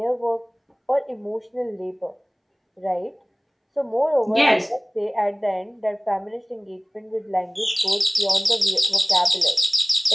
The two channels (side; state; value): both; identical; correlation 1.00